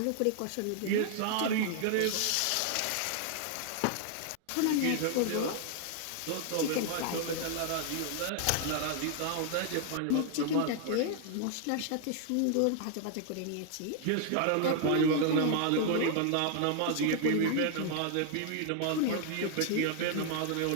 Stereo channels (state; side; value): different; both; correlation 0.00